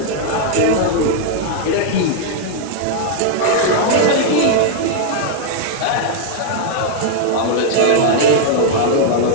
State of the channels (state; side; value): different; both; correlation -0.01